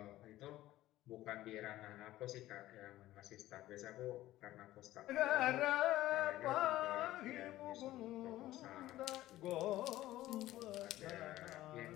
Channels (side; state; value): right; quieter; 15.4 dB